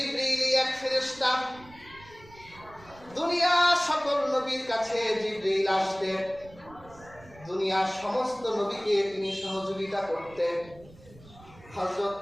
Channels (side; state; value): right; noise; rumble, 22 dB below the sound